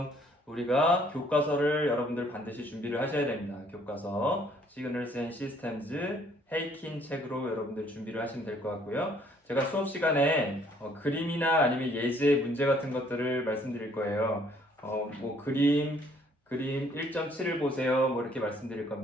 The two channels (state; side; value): normal; both; correlation 0.62